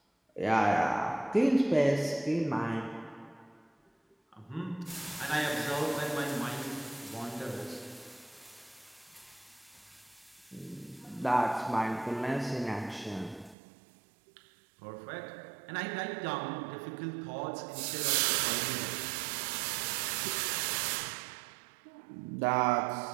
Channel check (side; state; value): left; drops out; at 13.6 s